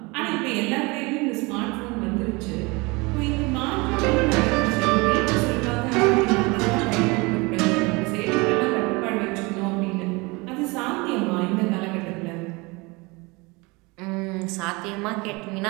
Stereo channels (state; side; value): quieter; left; 25.7 dB